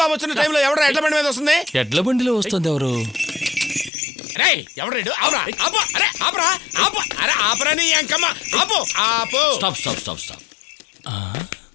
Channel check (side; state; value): right; drops out; at 3.9 s